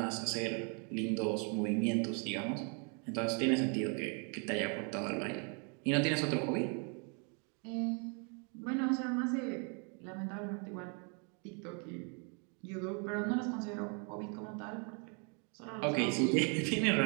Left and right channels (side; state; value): left; quieter; 37.6 dB